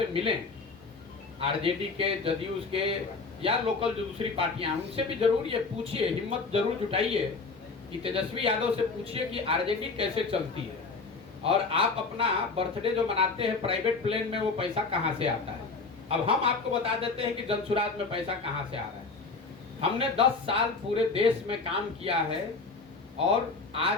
मिलें, आरजेडी के, जदयू के या लोकल जो दूसरी पार्टियां, उनसे भी जरूर ये पूछिए, हिम्मत जरूर जुटाइए कि तेजस्वी यादव से पूछिए कि आरजेडी कैसे चलती है और आप अपना बर्थडे जो मनाते हैं प्राइवेट प्लेन में, वो पैसा कहां से आता है। अब हम आपको बता देते हैं कि जनसुराज में पैसा कहां से आ रहा है। हमने 10 साल पूरे देश में काम किया है और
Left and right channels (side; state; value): right; quieter; 4.2 dB